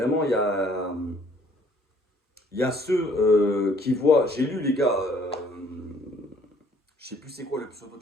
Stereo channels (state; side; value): normal; both; correlation 0.60